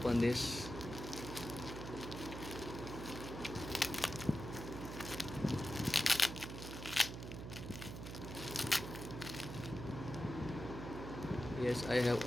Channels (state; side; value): noise; right; hum, 8 dB below the sound